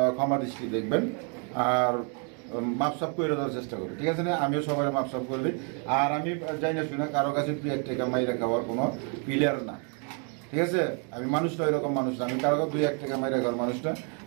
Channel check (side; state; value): left; quieter; 39.8 dB